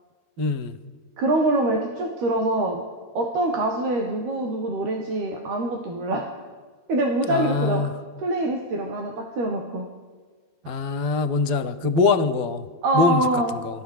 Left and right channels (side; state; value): left; late; 12 ms